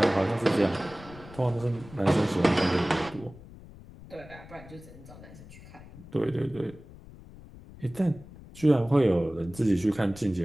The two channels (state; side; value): noise; left; rumble, 18 dB below the sound